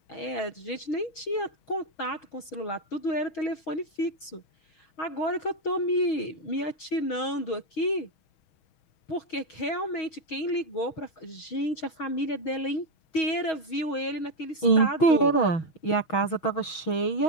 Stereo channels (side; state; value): right; late; 6.3 ms